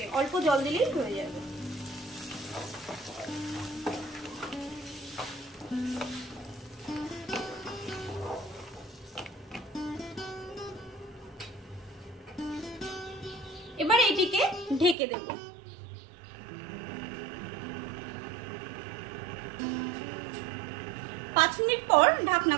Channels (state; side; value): drops out; left; at 15.0 s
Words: অল্প জল দিলেই হয়ে যাবে। এবার এটিকে ঢেকে দেব। 5 মিনিট পর ঢাকনা